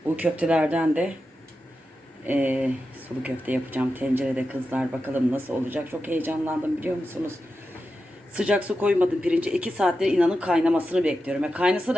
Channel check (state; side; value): normal; both; correlation 0.90